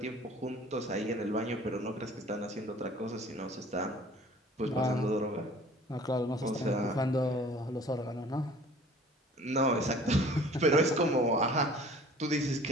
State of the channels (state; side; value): normal; both; correlation 0.48